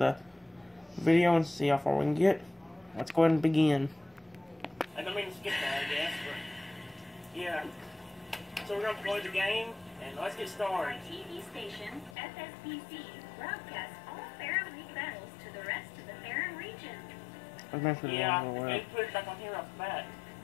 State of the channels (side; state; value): right; drops out; at 12.2 s